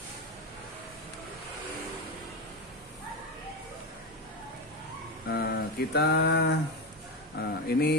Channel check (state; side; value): normal; both; correlation 0.16